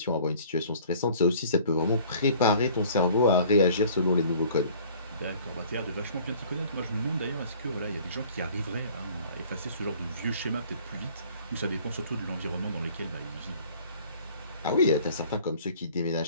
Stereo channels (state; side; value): inverted; both; correlation -0.51